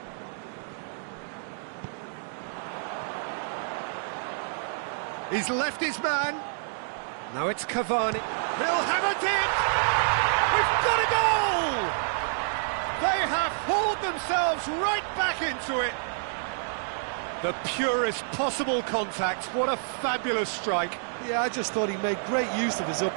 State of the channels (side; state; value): left; silent; digital silence